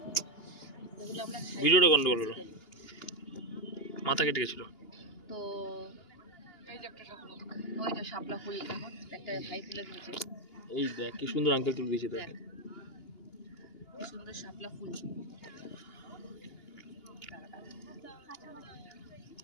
ভিডিওটা গন্ডগোল হলো, মাথা কেটে গেছিল। তো এই যে একটা শাপলা, ওই যে শাপলা ফুল দেখো, একটা ভাই তুলে দিয়েছে। এই দেখ কি সুন্দর আঙ্কেল তুলে দিয়েছে, দেখ কি সুন্দর শাপলা ফুল।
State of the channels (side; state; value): right; late; 2.8 ms